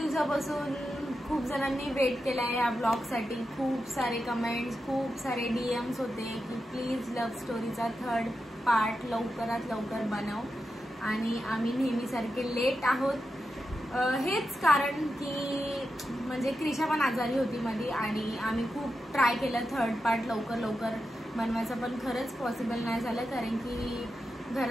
खूप जणांनी वेट केलाय या ब्लॉग साठी. खूप सारे कमेंट्स, खूप सारे डीएम्स होते की प्लीज लव्ह स्टोरीचा 3rd पार्ट लवकरात लवकर बनव. आणि आम्ही नेहमीसारखे लेट आहोत. हेच कारण की म्हणजे क्रिशा पण आजारी होती मध्ये आणि आम्ही खूप ट्राय केलं 3rd पार्ट लवकर बनवायचं, पण खरंच पॉसिबल नाही झालं. कारण की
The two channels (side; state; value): both; normal; correlation 0.89